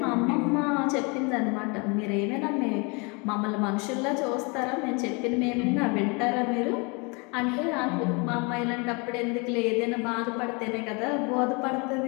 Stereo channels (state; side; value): quieter; right; 30.7 dB